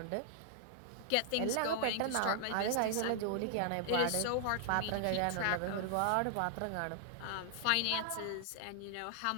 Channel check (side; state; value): both; different; correlation 0.00